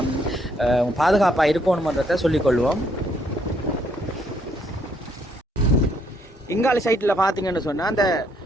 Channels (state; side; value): normal; both; correlation 0.70